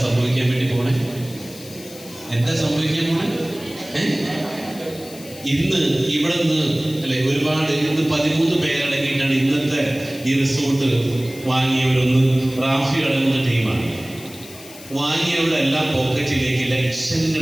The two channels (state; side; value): noise; left; hiss, 17 dB below the sound